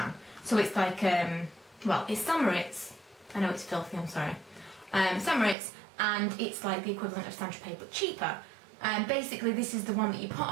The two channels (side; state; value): left; drops out; at 5.6 s